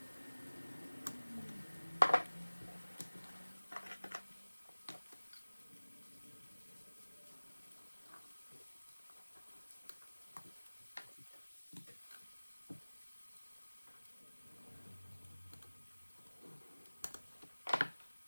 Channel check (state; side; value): inverted; both; correlation -1.00